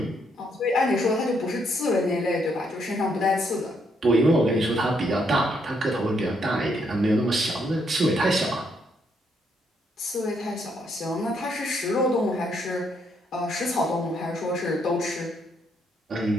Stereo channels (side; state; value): both; normal; correlation 0.74